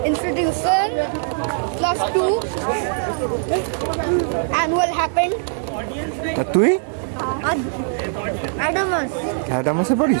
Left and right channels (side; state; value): left; silent; 63 dB below the other